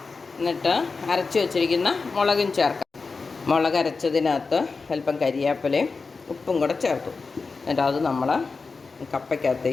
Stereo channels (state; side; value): quieter; right; 4.4 dB